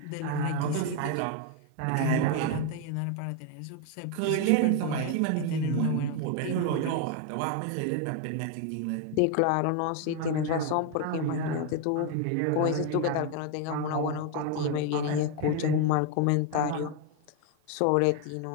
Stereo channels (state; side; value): different; both; correlation 0.01